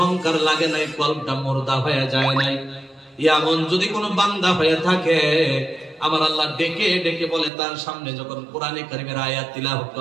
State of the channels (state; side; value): drops out; left; at 7.5 s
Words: লাগে নাই, কলবটা মুর্দা হয়ে যায় নাই, এমন যদি কোনো বান্দা হয়ে থাকে, আমার আল্লাহ ডেকে ডেকে বলে, তার সামনে যখন কোরআনে কারীমের আয়াত তিলাওয়াত